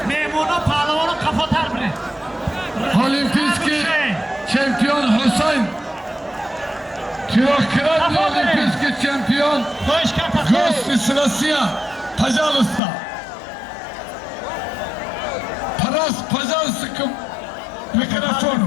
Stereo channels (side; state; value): right; drops out; at 12.8 s